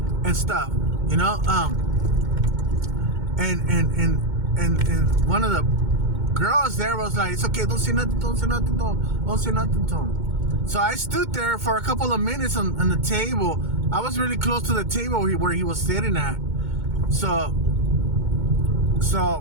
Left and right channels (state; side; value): late; left; 2.2 ms